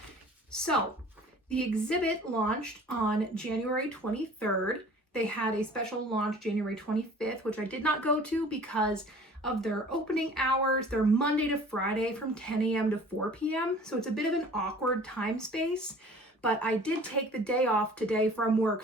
So the exhibit launched on January 23rd. They had a special launch January 25th, which I did not go to because of their opening hours. They're Monday to Friday from 10 a.m. to 4 p.m. So it's a bit of an awkward time space, but I did take the day off today from work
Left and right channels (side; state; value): both; normal; correlation 0.48